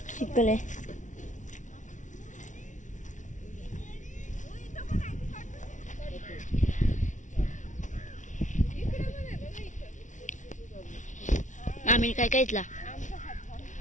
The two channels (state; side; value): late; right; 0.36 ms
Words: शिकले. आम्ही काय काय इथला